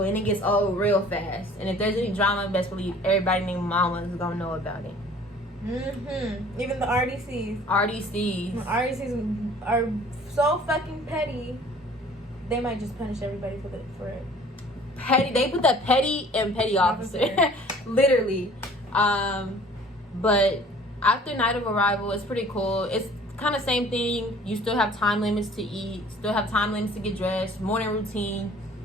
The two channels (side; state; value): both; normal; correlation 0.51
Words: and it gets old real fast. And if there's any drama, best believe everybody named Mama is gonna know about it. Even the RDCs. RDCs are so fucking petty. They might just punish everybody for it. Petty. They put the petty and petty officer. Literally. But after night of arrival, it's pretty cool. It's kind of same thing. You still have time limits to eat, still have time limits to get dressed, morning routine,